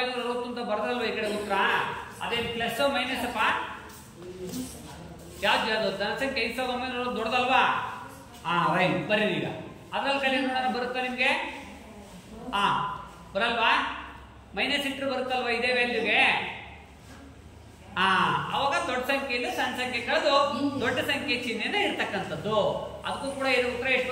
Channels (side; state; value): both; identical; correlation 1.00